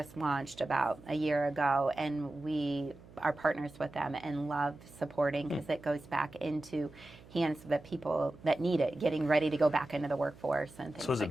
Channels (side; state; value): right; noise; hum, 21 dB below the sound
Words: launched about a year ago, and we are partners with them and love supporting, because it goes back into hands of the people that need it, getting ready to go back into the workforce and things. So is it